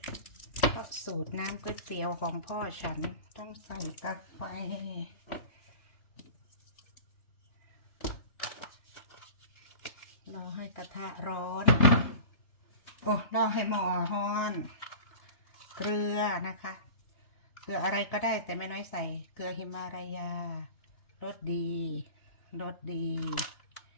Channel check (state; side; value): late; right; 3.3 ms